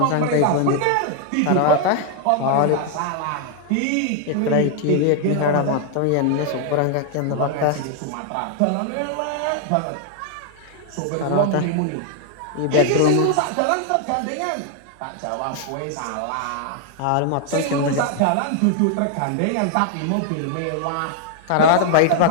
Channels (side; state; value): both; different; correlation 0.00